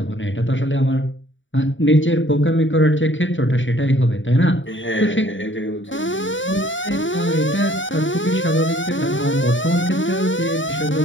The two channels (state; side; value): late; right; 0.55 ms